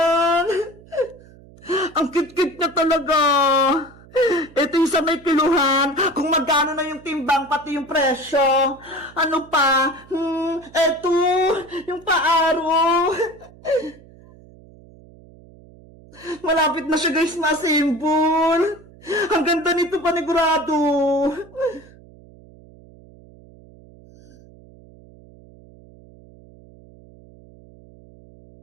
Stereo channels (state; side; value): noise; right; hum, 23 dB below the sound